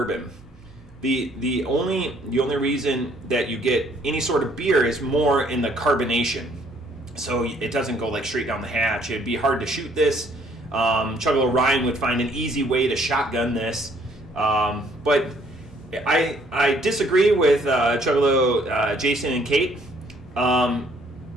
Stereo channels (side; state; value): both; normal; correlation 0.63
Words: The only reason that you get any sort of beer is more in the carbonation. So it doesn't go like straight down the hatch. It'd be hard to shoot this. Chuggalo Ryan would find an easy way to shotgun this. But I disagree with Chuggalo Jason and Kate.